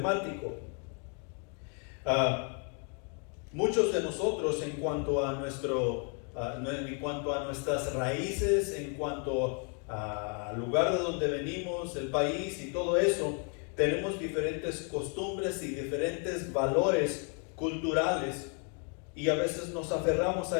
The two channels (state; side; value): quieter; right; 39.4 dB